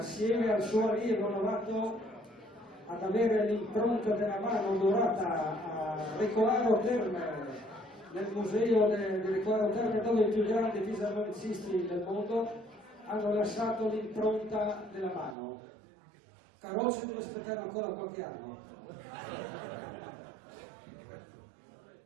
al suo allievo novato, ad avere l'impronta della mano dorata a Recolaro Terme, nel museo di Recolaro Terme, dove i più grandi fisarmonicisti del mondo hanno lasciato l'impronta della mano. Carrozze deve aspettare ancora qualche anno.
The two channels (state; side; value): drops out; left; at 15.4 s